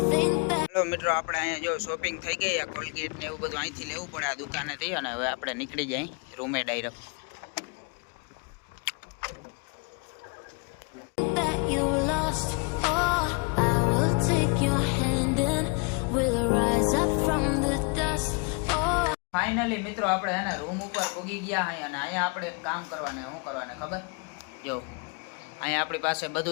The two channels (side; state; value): right; quieter; 32.9 dB